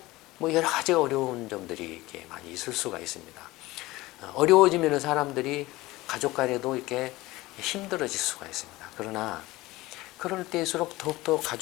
뭐 여러 가지 어려운 점들이 이렇게 많이 있을 수가 있습니다. 어려워지면 사람들이 가족 간에도 이렇게 힘들어질 수가 있습니다. 그러나 그럴 때일수록 더욱더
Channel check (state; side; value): quieter; right; 19.2 dB